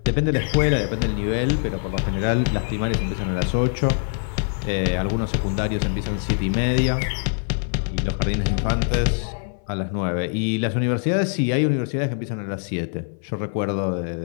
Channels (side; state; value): right; silent; 57 dB below the other